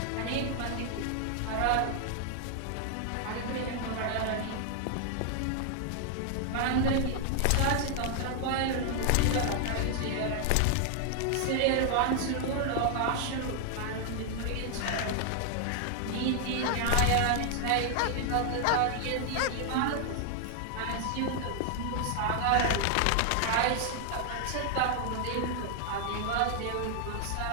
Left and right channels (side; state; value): both; different; correlation 0.00